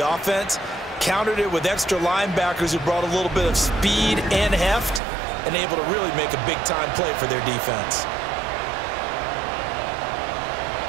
countered it with extra linebackers who brought a little bit of speed and heft, and able to really make a big-time play for their defense.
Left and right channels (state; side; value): drops out; left; at 5.0 s